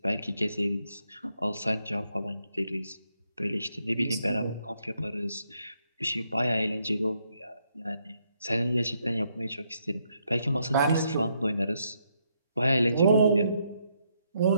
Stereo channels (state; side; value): inverted; both; correlation -0.76